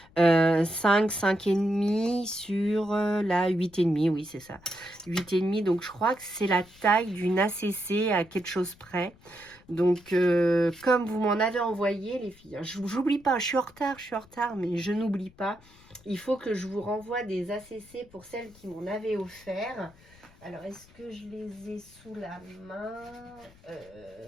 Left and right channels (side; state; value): left; noise; rumble, 26 dB below the sound